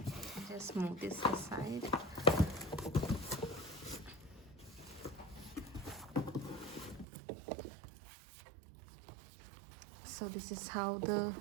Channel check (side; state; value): left; drops out; at 7.1 s